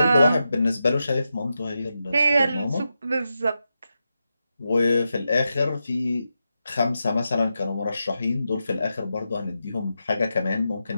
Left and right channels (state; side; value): inverted; both; correlation -0.88